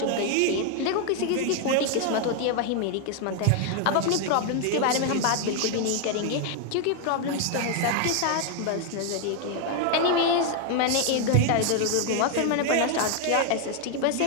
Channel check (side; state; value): both; different; correlation 0.00